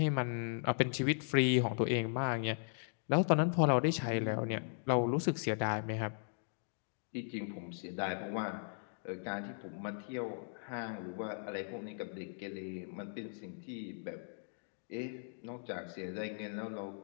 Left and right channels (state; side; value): silent; right; digital silence